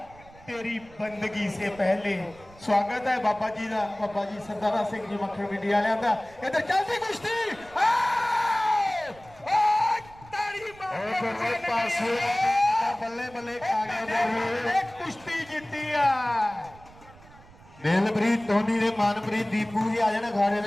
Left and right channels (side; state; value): right; noise; rumble, 23 dB below the sound